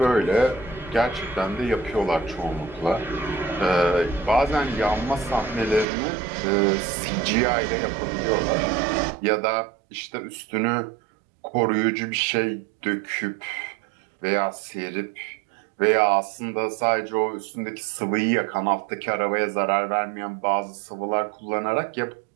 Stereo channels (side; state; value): left; drops out; at 5.9 s